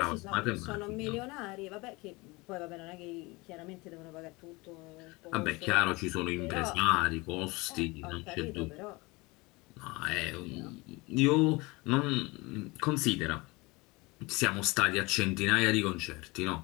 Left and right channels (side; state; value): right; quieter; 24.2 dB